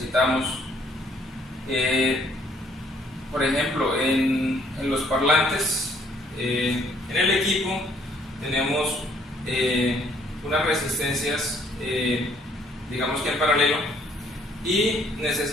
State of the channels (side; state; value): both; normal; correlation 0.64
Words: Por ejemplo, en los parlantes, en el equipo tenemos unas resistencias, digamos que en paralelo, y